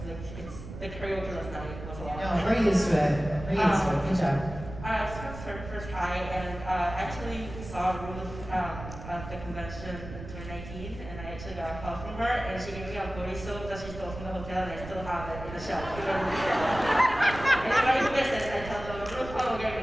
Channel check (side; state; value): right; noise; rumble, 11 dB below the sound